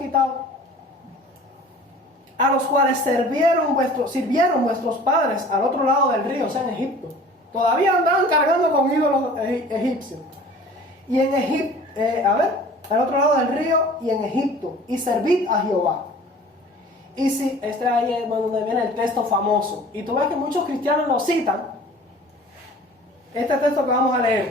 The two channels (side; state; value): both; normal; correlation 0.46